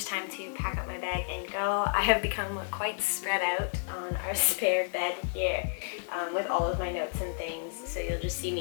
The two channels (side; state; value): right; silent; digital silence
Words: time to pack up my bag and go. I have become quite spread out on our spare bed here with all of my notes and things. So you'll just see